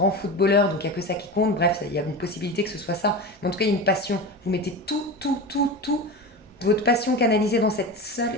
footballeur, donc il n'y a que ça qui compte. Bref, il y a une possibilité que ce soit ça. Mais en tout cas, il y a une passion. Vous mettez tout votre passion canalisée dans ce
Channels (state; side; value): normal; both; correlation 0.26